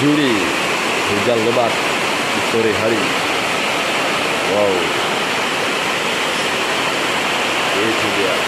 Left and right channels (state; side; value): identical; both; correlation 1.00